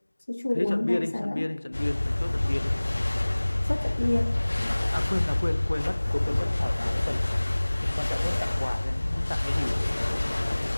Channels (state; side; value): inverted; both; correlation -1.00